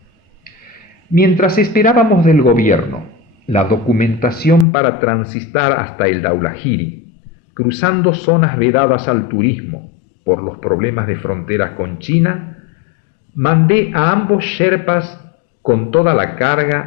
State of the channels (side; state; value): right; drops out; at 4.7 s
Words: Mientras esperábamos del gobierno la documentación para transitar hasta el Dhaulagiri, cruzando zonas vedadas al turismo por los problemas de fronteras con China, mandé a ambos Sherpas con toda la